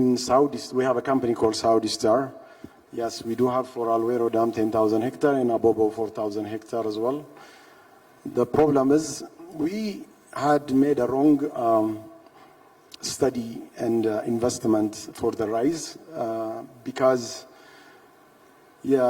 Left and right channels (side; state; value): both; identical; correlation 1.00